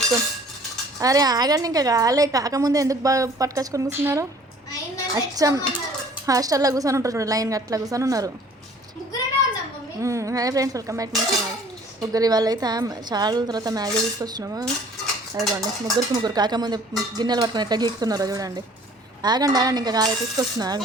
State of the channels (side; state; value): both; normal; correlation 0.53